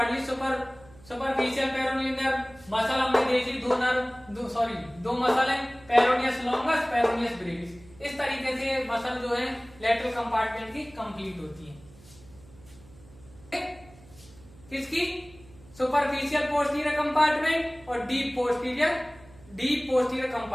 ली, सुपरफिशियल पेरोनियल नर्व। मसल हमने देखी, दो मसल है, पेरोनियस लॉन्गस, पेरोनियस ब्रेविस। इस तरीके से मसल जो है लेटरल कंपार्टमेंट की कंप्लीट होती है। किसकी, सुपरफिशियल पोस्टीरियर कंपार्टमेंट और डीप पोस्टीरियर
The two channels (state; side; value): noise; right; hum, 23 dB below the sound